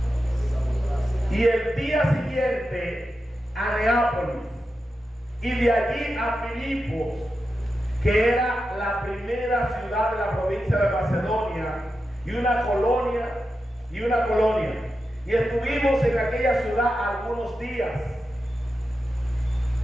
Y el día siguiente a Neápolis, y de allí a Filipos, que era la primera ciudad de la provincia de Macedonia, y una colonia. Y estuvimos en aquella ciudad algunos días.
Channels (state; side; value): normal; both; correlation 0.90